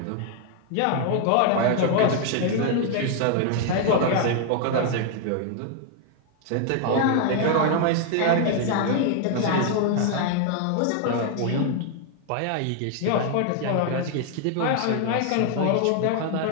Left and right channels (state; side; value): different; both; correlation 0.00